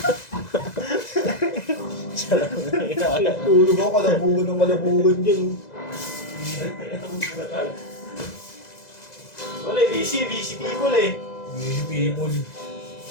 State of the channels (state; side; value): late; right; 2.0 ms